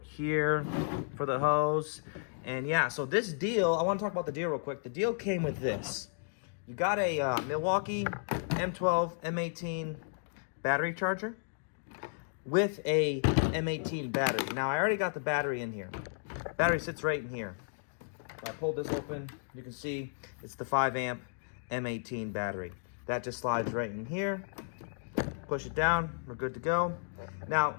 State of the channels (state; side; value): silent; right; digital silence